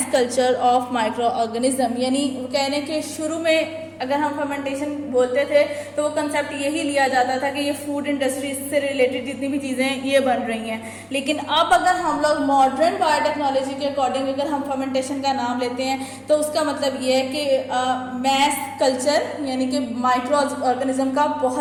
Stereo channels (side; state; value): both; identical; correlation 1.00